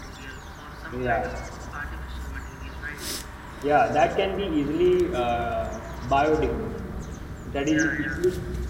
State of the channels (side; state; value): both; identical; correlation 1.00